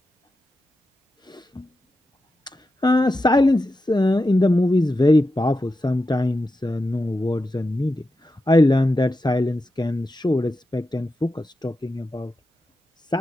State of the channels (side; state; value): both; normal; correlation 0.89